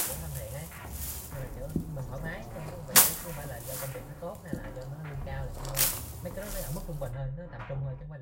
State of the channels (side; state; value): both; identical; correlation 1.00